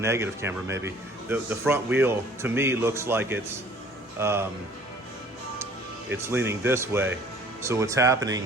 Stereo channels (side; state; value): both; normal; correlation 0.53